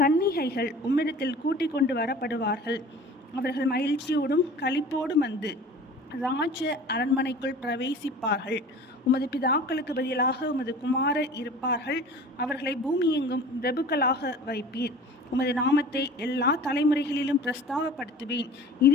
கன்னிகைகள் உம்மிடத்தில் கூட்டிக் கொண்டு வரப்படுவார்கள். அவர்கள் மகிழ்ச்சியோடும் களிப்போடும் வந்து ராஜ அரண்மனைக்குள் பிரவேசிப்பார்கள். உமது பிதாக்களுக்கு பதிலாக உமது குமாரர் இருப்பார்கள். அவர்களை பூமியெங்கும் பிரபுக்களாக வைப்பீர். உமது நாமத்தை எல்லா தலைமுறைகளிலும் பிரஸ்தாபப்படுத்துவேன்.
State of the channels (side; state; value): both; normal; correlation 0.42